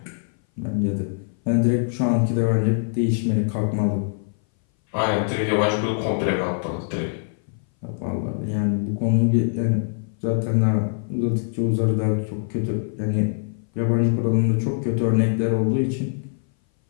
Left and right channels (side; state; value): right; silent; 59 dB below the other